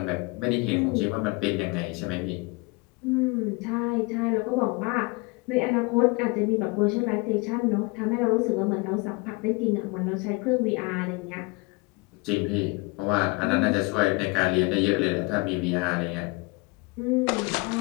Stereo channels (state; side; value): quieter; right; 27.6 dB